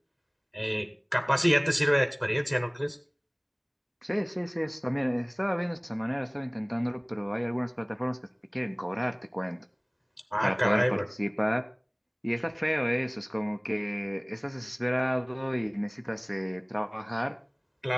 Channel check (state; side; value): identical; both; correlation 1.00